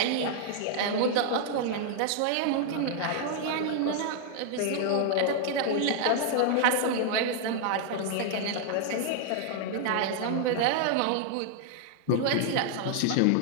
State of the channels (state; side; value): different; both; correlation -0.01